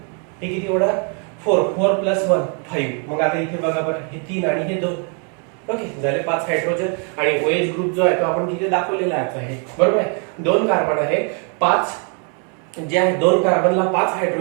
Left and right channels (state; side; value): quieter; left; 39.4 dB